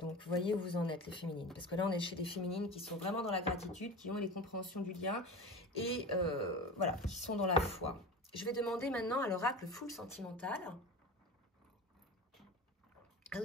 Donc, vous voyez où vous en êtes, les féminines. Parce que là, on est chez des féminines qui sont vraiment dans la gratitude, qui ont les compréhensions du lien et voilà, qui sont dans la foi. Je vais demander maintenant à l'oracle full sentimental. Ah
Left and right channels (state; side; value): normal; both; correlation 0.31